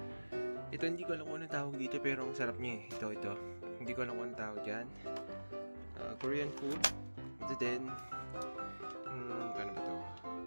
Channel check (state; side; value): inverted; both; correlation -1.00